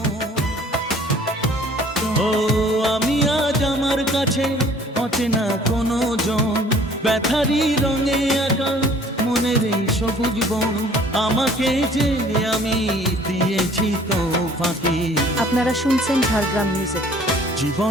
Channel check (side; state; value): both; normal; correlation 0.53